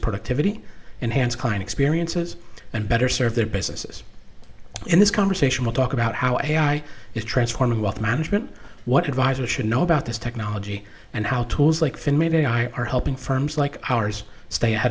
productivity, enhance client experiences, and better serve their businesses. In this conversation, we'll talk about how AI is transforming wealth management, what advisors should know about this technology, and how tools like FinMate AI are helping firms like ours stay ahead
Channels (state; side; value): identical; both; correlation 1.00